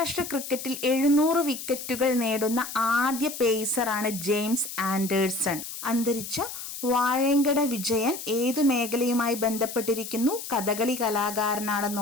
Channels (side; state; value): left; noise; hiss, 9 dB below the sound